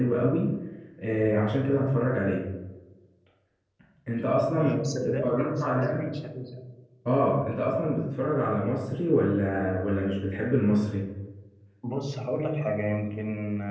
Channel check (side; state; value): both; identical; correlation 1.00